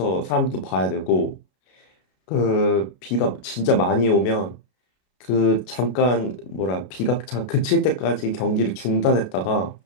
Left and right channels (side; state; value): right; late; 33 ms